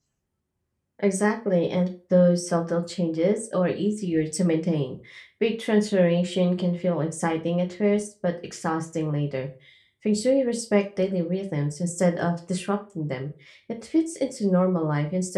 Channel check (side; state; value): both; identical; correlation 1.00